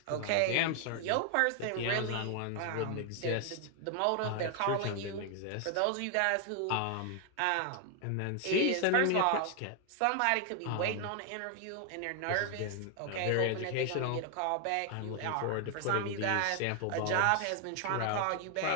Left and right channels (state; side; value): different; both; correlation 0.00